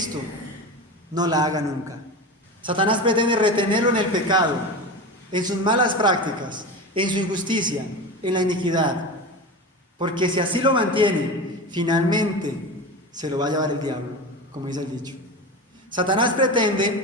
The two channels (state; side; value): normal; both; correlation 0.26